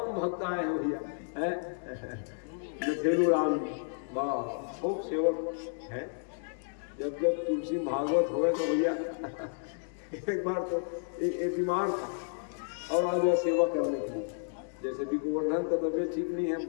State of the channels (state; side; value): silent; right; digital silence